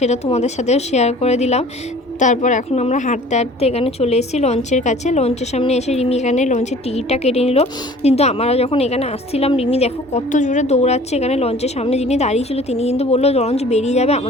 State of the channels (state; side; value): normal; both; correlation 0.48